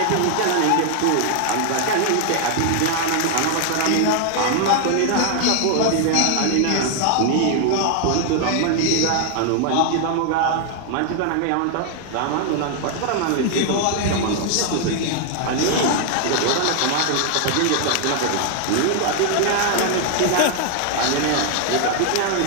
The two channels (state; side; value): different; both; correlation 0.00